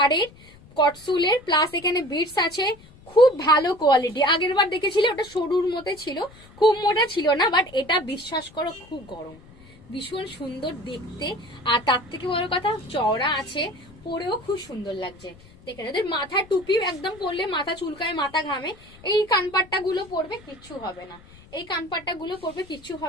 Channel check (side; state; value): left; noise; rumble, 23 dB below the sound